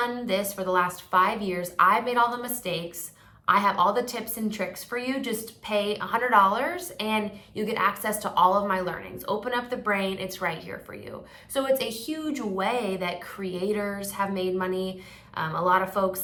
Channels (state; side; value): identical; both; correlation 1.00